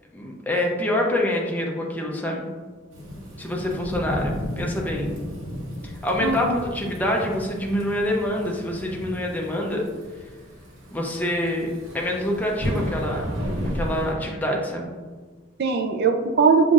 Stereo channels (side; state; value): both; normal; correlation 0.39